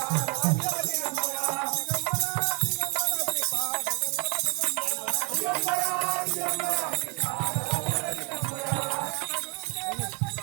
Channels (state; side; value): quieter; left; 33.9 dB